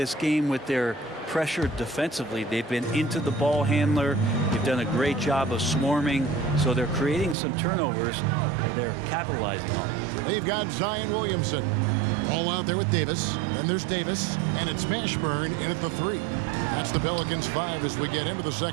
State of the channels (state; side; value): drops out; left; at 7.4 s